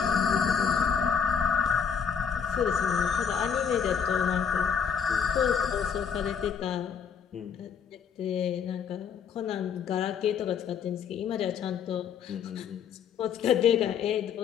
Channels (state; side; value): quieter; right; 7.2 dB